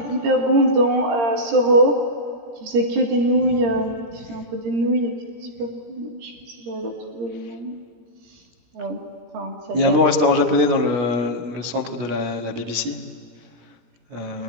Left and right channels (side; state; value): left; late; 16 ms